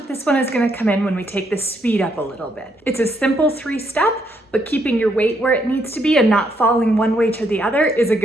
this one is going to come in when we take the speed up a little bit. It's a simple 3-step, but keeping your weight where it needs to be and not falling one way to the other is a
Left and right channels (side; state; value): both; normal; correlation 0.74